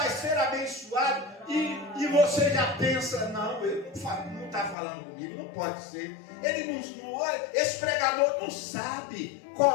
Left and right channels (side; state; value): right; drops out; at 4.8 s